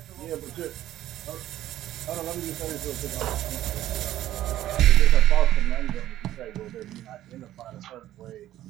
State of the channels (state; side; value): quieter; left; 13.4 dB